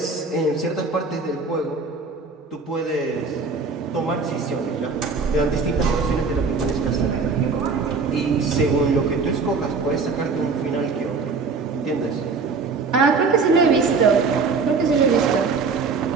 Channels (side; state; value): left; quieter; 4.6 dB